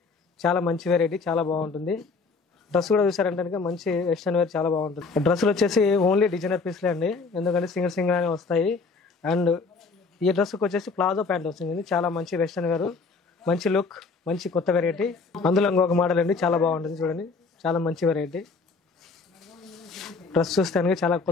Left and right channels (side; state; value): right; quieter; 4.4 dB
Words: చాలా మంచి వెరైటీ, చాలా బాగుంటుంది. డ్రెస్ కూడా చూసారంటే మంచి వెస్ట్రన్ వేర్ చాలా బాగుంటుంది. డ్రెస్సులు వచ్చేసి ఓన్లీ డిజైనర్ పీస్లే అండి, ఎందుకంటే సింగిల్ సింగిల్ అనే వస్తాయి. అండ్ ఈ డ్రెస్కి వచ్చేసి ప్లాజో ప్యాంట్ వస్తుంది. చాలా మంచి వెస్ట్రన్ వేర్, మంచి లుక్, మంచి కొత్త వెరైటీ. అందులో ఇంకొక మోడల్ అండి, చాలా బాగుంటుంది. చూడండి, చాలా మంచి వెరైటీ. డ్రెస్ చూస్తానికి చాలా